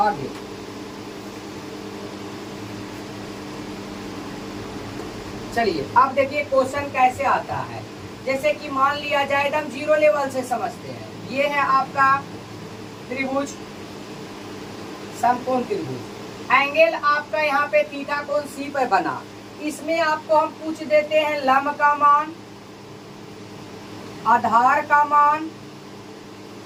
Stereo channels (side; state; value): both; identical; correlation 1.00